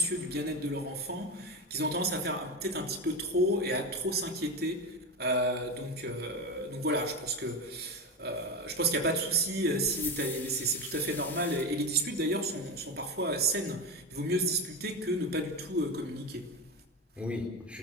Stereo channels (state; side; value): normal; both; correlation 0.19